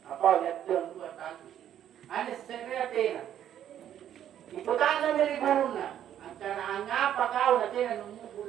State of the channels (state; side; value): quieter; left; 10.5 dB